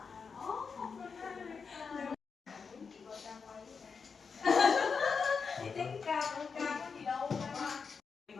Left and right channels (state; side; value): quieter; right; 5.5 dB